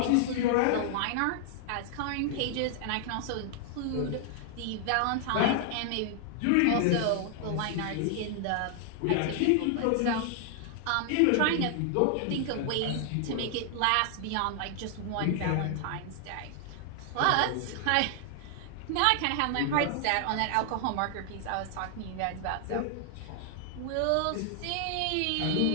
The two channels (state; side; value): different; both; correlation 0.00